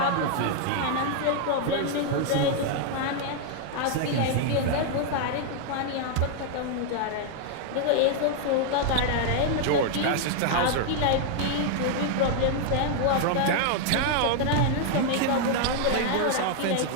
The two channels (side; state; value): both; different; correlation 0.00